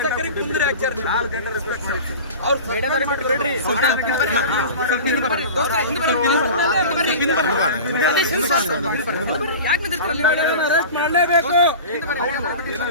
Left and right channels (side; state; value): both; inverted; correlation -0.34